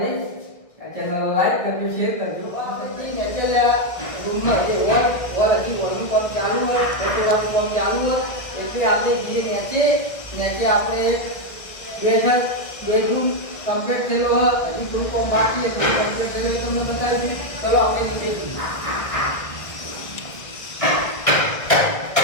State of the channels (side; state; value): right; late; 1.6 ms